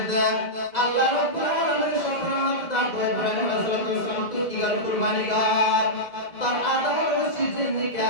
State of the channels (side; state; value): right; late; 2.0 ms